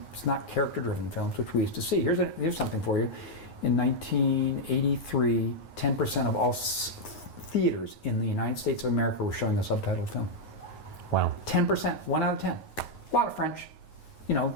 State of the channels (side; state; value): right; late; 9.4 ms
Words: not character-driven films, which we used to see. Here's something for you. In 1983, 10% of all theaters in the United States of America were showing a subtitled film. Wow. 10%, 1 out of 10. A lot of French, you know,